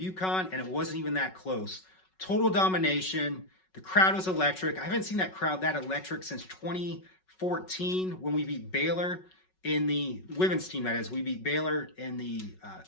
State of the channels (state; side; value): late; right; 5.4 ms